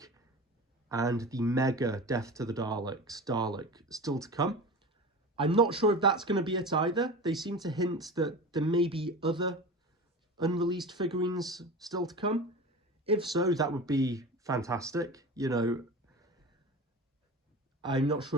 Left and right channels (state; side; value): normal; both; correlation 0.31